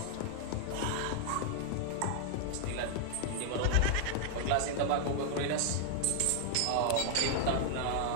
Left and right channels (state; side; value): different; both; correlation 0.00